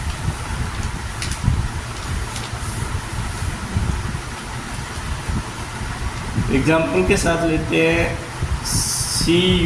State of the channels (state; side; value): identical; both; correlation 1.00